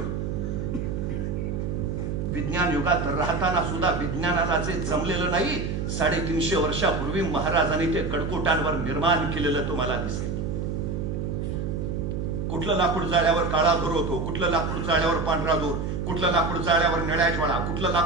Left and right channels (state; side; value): noise; right; hum, 2 dB below the sound